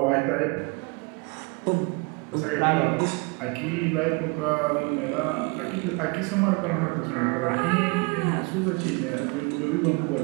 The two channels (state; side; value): quieter; left; 29.7 dB